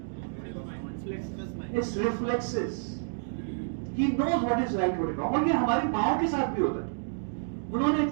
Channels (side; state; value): left; silent; digital silence